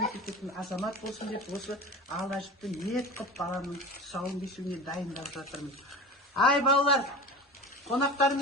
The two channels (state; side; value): normal; both; correlation 0.33